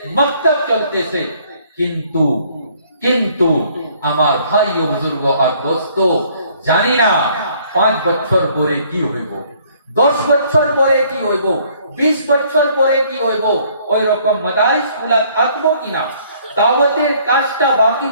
মক্তব চলতেছে. কিন্তু আমার ভাই ও বুজুর্গ আর দোস্ত, জানি না 5 বছর পরে কি হইব, 10 বছর পরে কি হইব, 20 বছর পরে কি হইব. ওই রকম মাদারিস গুলা থাকবো কিনা, দাওয়াতের কাজটা বাকি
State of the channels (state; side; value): inverted; both; correlation -0.61